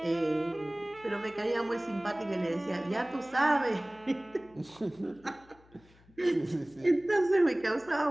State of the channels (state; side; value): noise; left; hum, 28 dB below the sound